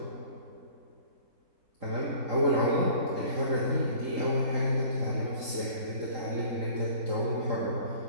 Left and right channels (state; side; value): late; left; 3.8 ms